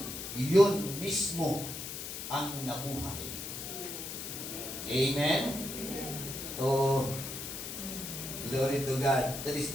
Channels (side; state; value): left; noise; hiss, 7 dB below the sound